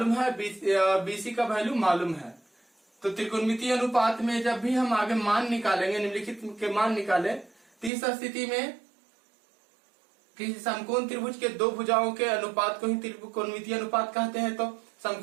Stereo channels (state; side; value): drops out; left; at 7.9 s